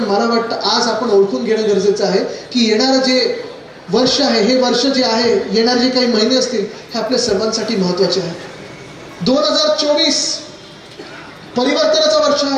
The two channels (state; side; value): identical; both; correlation 1.00